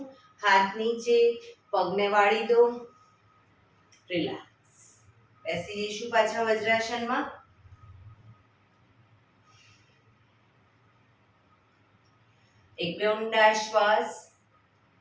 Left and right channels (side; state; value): both; identical; correlation 1.00